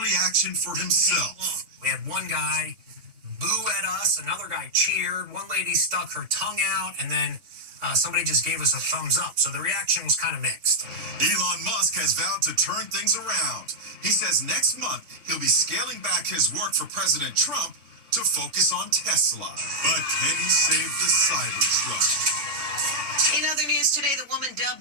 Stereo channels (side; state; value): left; late; 3.5 ms